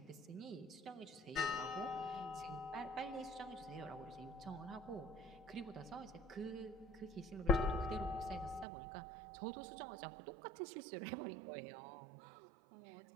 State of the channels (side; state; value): left; drops out; at 8.7 s